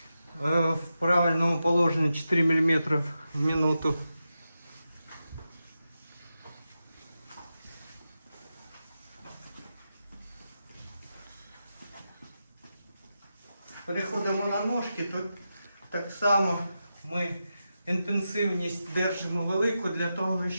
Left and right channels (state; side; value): inverted; both; correlation -0.89